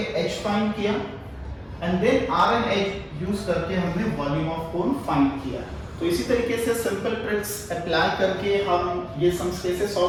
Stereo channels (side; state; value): both; identical; correlation 1.00